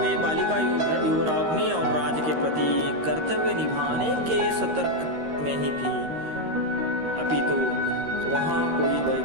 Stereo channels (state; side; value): late; left; 13 ms